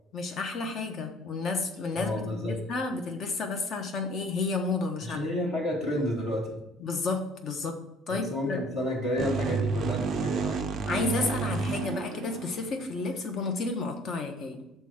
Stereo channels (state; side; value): normal; both; correlation 0.54